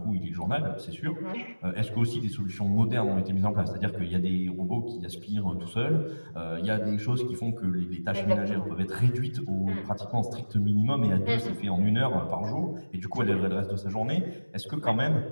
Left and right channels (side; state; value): both; inverted; correlation -1.00